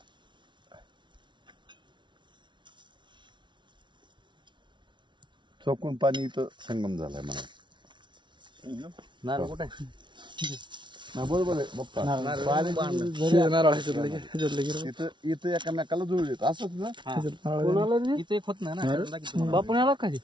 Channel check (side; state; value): left; late; 0.23 ms